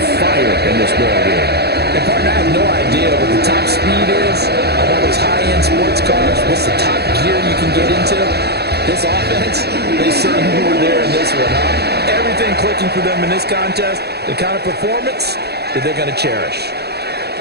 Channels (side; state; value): left; late; 0.47 ms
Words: fire in this ball game. And partner, I have no idea what the top speed is on all those high-end sports cars. What's the top gear you can get into? This offense, they certainly were there in this one, huh? Everything clicking for them in this contest, the kind of performance that they're going to cherish.